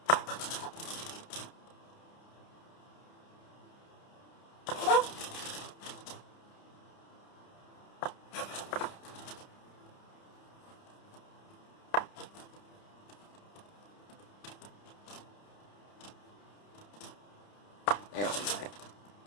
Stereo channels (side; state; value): right; late; 30 ms